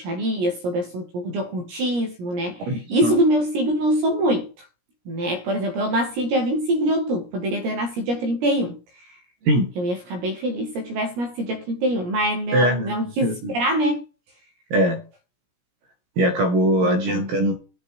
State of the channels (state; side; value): late; left; 17 ms